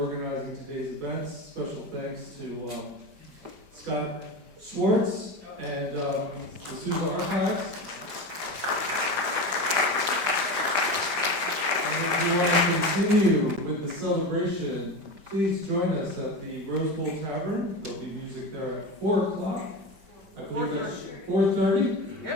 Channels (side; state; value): left; late; 5.1 ms